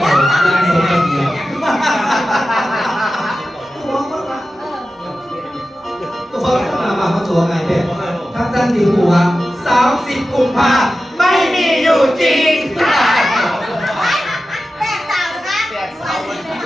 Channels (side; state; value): both; normal; correlation 0.93